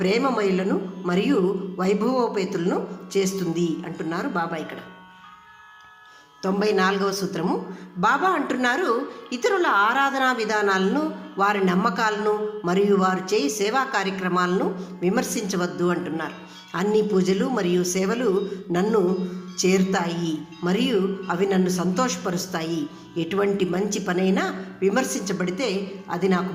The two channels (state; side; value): identical; both; correlation 1.00